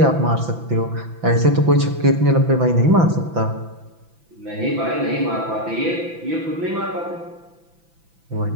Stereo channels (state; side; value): late; left; 6.0 ms